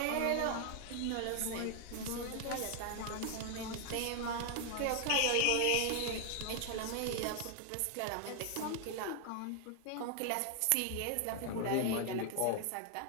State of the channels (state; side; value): different; both; correlation 0.00